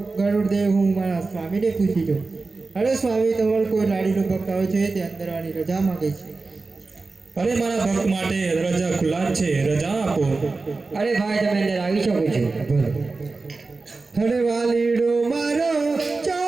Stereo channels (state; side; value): quieter; left; 3.8 dB